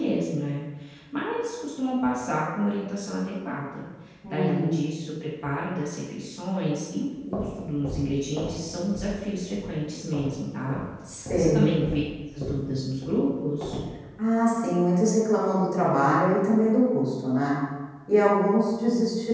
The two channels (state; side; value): identical; both; correlation 1.00